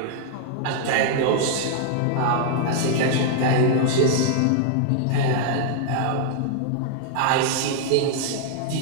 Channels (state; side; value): different; both; correlation -0.01